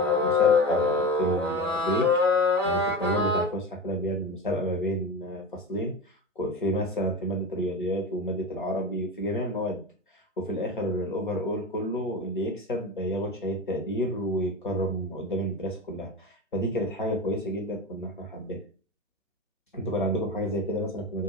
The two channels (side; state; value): both; normal; correlation 0.25